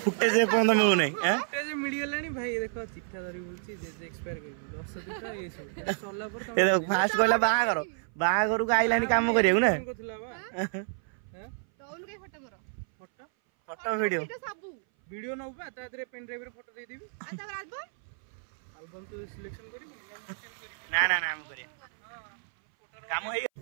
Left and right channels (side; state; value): left; silent; 58 dB below the other